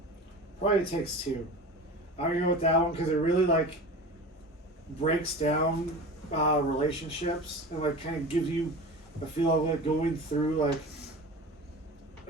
Probably It Takes Two. I'm gonna go with that one because it really breaks down relationships and kind of gives you a feel of going through a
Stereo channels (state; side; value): normal; both; correlation 0.33